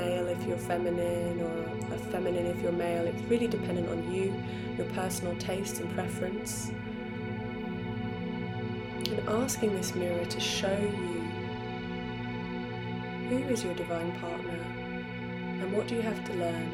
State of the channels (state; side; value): identical; both; correlation 1.00